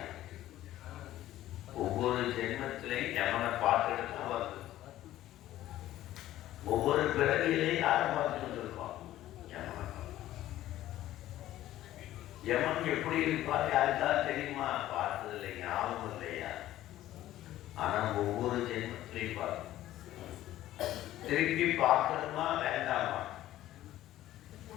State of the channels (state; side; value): quieter; right; 14.1 dB